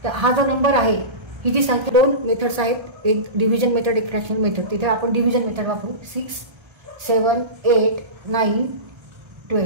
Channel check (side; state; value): left; late; 1.3 ms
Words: तर हा जो नंबर आहे, ही जी संख्या 2 मेथड्स आहेत, एक डिव्हिजन मेथड, एक फ्रॅक्शन मेथड. तिथे आपण डिव्हिजन मेथड वापरू. 6, 7, 8, 9,